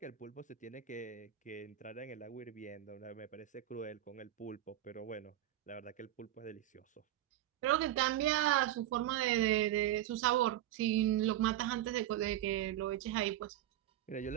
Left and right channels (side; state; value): left; quieter; 13.0 dB